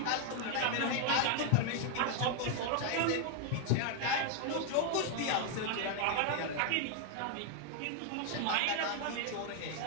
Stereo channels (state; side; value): different; both; correlation 0.00